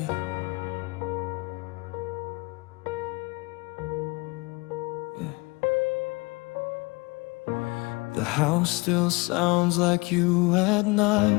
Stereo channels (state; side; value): quieter; right; 25.7 dB